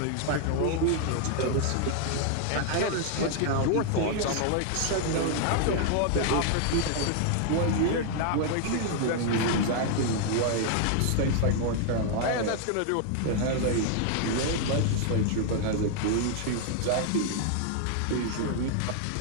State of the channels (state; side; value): different; both; correlation 0.00